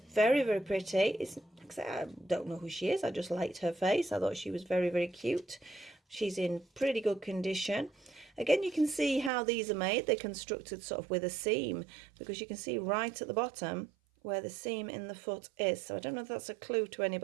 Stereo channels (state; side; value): drops out; left; at 9.3 s